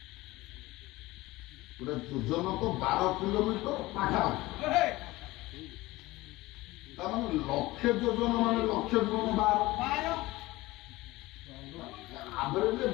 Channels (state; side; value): quieter; right; 19.4 dB